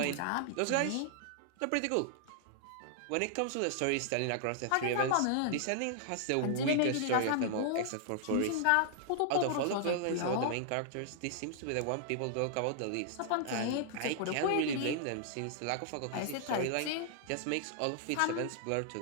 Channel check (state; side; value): different; both; correlation -0.01